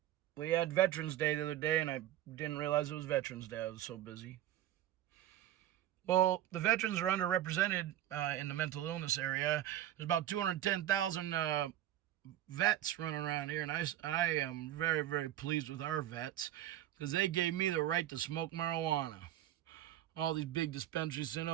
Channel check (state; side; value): quieter; left; 12.6 dB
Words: We had Veterans Day the other day, and I didn't realize it was Veterans Day. I was so busy. Well, the veterans are underrepresented in the mental illness area. There's about 210,000 vets running around here, and I am very, very pleased with our vets because they gave me the right to smoke marijuana. All these big dispensaries saying,